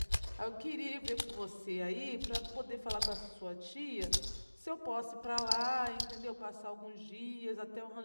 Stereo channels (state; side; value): inverted; both; correlation -1.00